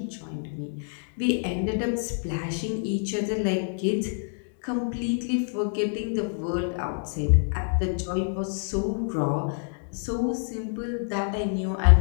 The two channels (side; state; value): right; silent; digital silence